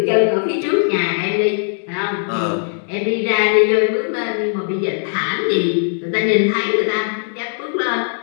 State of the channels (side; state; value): right; silent; digital silence